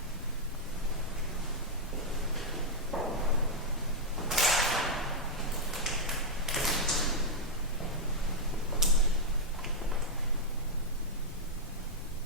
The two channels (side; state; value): left; noise; rumble, 12 dB below the sound